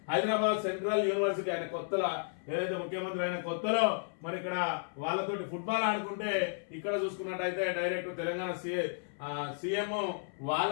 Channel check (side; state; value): right; silent; 56 dB below the other